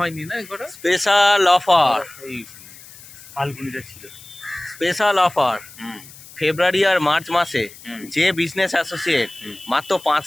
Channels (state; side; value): noise; left; hiss, 19 dB below the sound